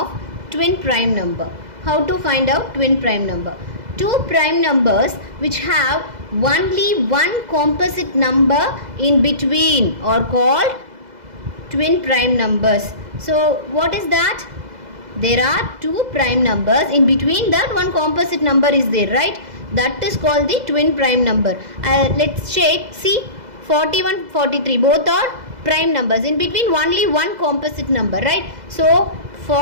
twin prime number? How to find out twin prime number? 2 prime numbers which have only one composite number in between are called twin prime numbers. So what is that? There are 2 prime numbers, in between that one composite number is there, right? That is called the twin prime number. Let's check. See, 41, 43 both are prime numbers, in between only one composite number, right? So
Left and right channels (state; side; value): late; left; 2.0 ms